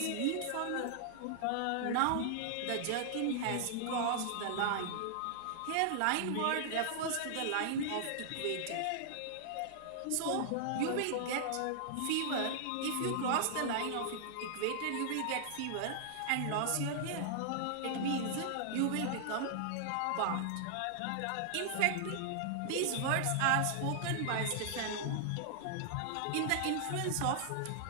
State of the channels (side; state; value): both; different; correlation -0.01